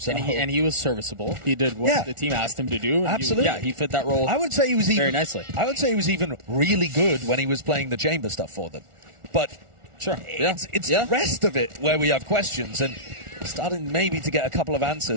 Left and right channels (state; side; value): late; left; 1.4 ms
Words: and he was serviceable. He did what the team asked him to do. Absolutely. He fit that role. I would say he was very nicely. I would say he was even really good when he was playing the chamber stuff for them. But sure, it's the rest of it where we have questions, and starting maybe to get a couple of